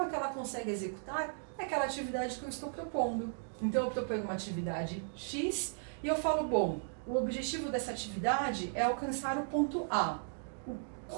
que ela consegue executar aquela atividade que eu estou propondo. Então eu proponho uma atividade X e eu falo, bom, o objetivo dessa atividade é alcançar o ponto A.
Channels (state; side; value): silent; left; digital silence